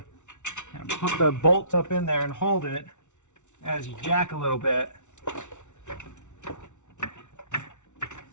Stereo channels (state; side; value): late; right; 0.84 ms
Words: put the bolts up in there and hold it as you jack a little bit.